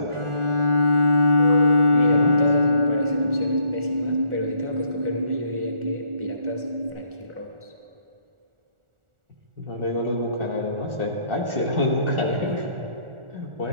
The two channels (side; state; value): left; late; 1.4 ms